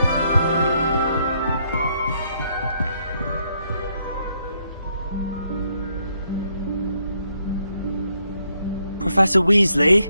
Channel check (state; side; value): inverted; both; correlation -0.74